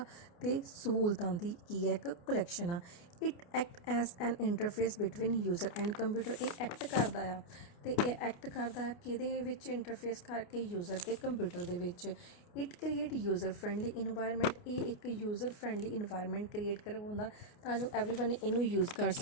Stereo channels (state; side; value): late; right; 29 ms